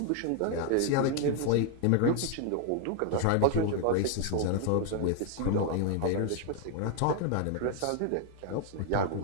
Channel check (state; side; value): different; both; correlation 0.00